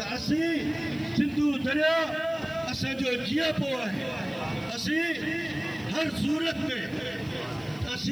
असीं सिंधु दरिया असांजो जीअपो आहे। असीं हर सूरत में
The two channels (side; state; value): right; noise; hiss, 27 dB below the sound